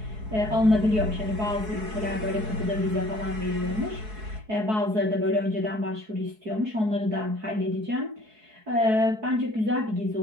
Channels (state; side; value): late; left; 4.7 ms